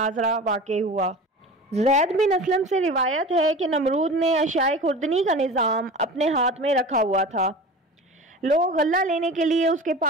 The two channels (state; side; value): normal; both; correlation 0.35